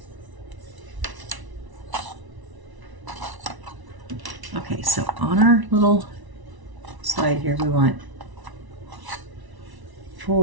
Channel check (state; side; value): late; left; 1.0 ms